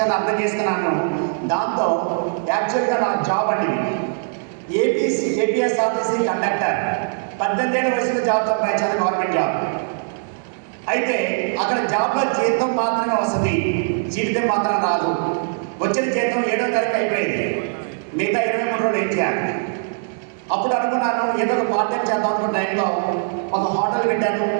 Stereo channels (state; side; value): silent; left; digital silence